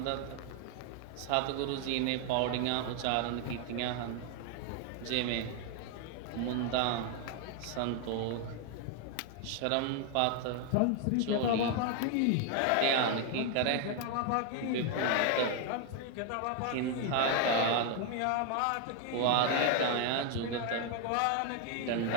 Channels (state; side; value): different; both; correlation 0.01